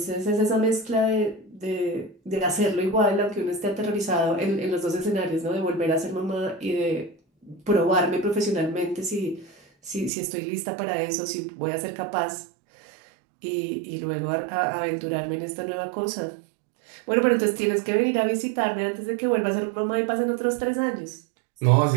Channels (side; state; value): left; drops out; at 10.1 s